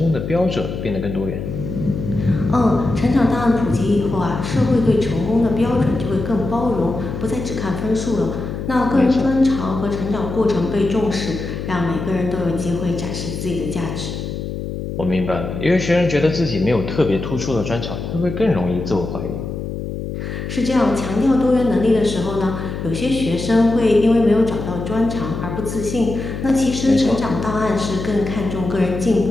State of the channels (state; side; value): noise; left; hum, 6 dB below the sound